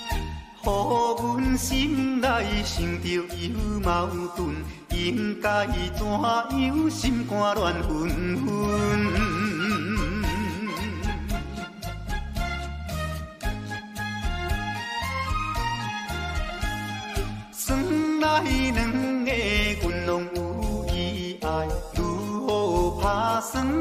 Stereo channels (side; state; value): both; identical; correlation 1.00